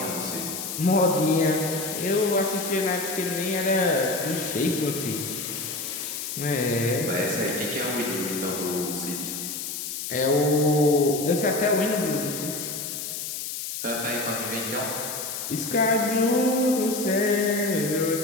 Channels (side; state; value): left; noise; hiss, 6 dB below the sound